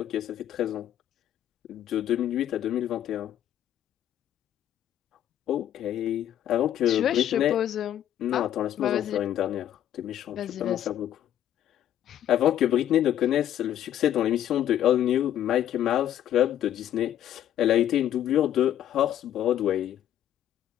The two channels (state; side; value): quieter; right; 11.2 dB